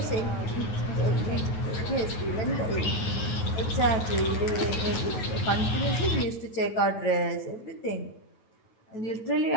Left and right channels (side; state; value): right; late; 9.4 ms